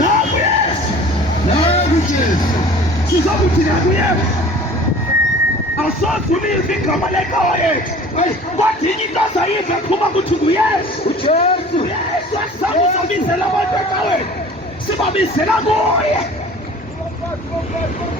Yesu. Nangu Jesu. Sizokuthi nangu Yesu. Awusoze ulive igama lenkosi yethu. Kodwa inye into azayiva kuba kuthi nguYesu. uJesu. UYesu asizabizela abantu ecaweni. Sibabizela kuye.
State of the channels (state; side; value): normal; both; correlation 0.45